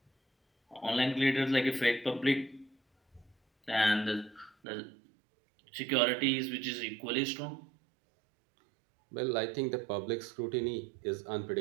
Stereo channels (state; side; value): drops out; left; at 4.5 s